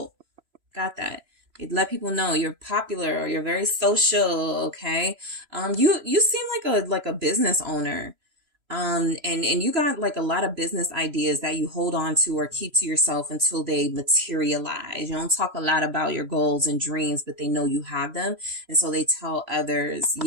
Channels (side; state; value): left; late; 3.0 ms